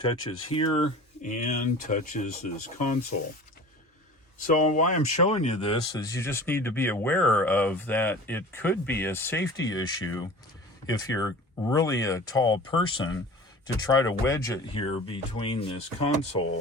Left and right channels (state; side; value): normal; both; correlation 0.39